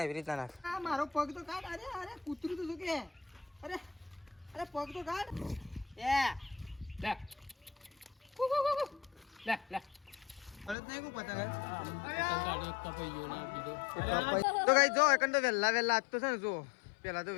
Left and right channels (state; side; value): drops out; right; at 10.8 s